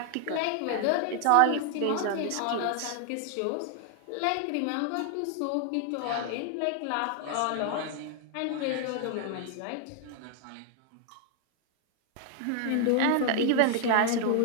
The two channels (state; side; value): different; both; correlation 0.00